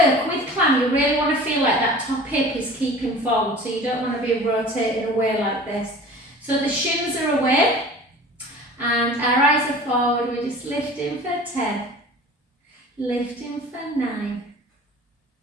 with climb. You really want to feel like that top hip is keeping forward. So you don't want to be rotating away like this. So the shins are away and our eyes are forward. We're just lifting for 10. Lifting for 9.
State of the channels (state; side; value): normal; both; correlation 0.42